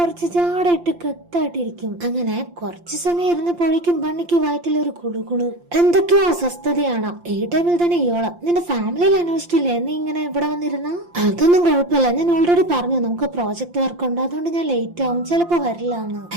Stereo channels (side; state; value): left; late; 5.8 ms